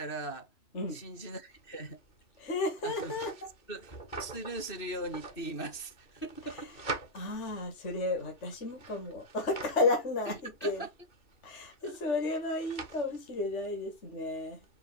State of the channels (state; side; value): late; right; 2.6 ms